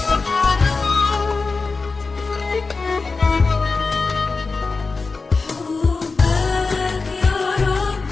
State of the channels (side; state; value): right; quieter; 4.1 dB